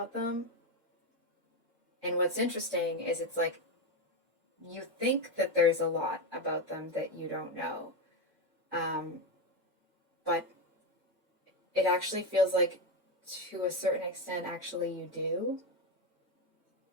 them. And what's interesting is it's like you think that there's a lot about them that you don't know. But it actually feels like to a certain extent, actually you do.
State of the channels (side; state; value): both; normal; correlation 0.12